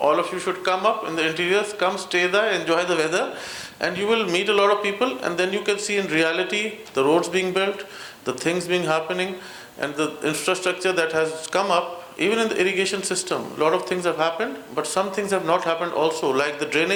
of you should come up in the interiors, come stay there, enjoy the weather, and you will meet a lot of people, and then you can see in reality the roads being built, the things being happening, and the infrastructure that has come up. Even in the irrigation system, a lot of things have happened, but some things have not happened also, like the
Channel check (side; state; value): both; identical; correlation 1.00